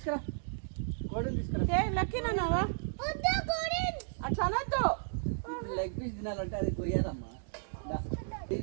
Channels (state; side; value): silent; left; digital silence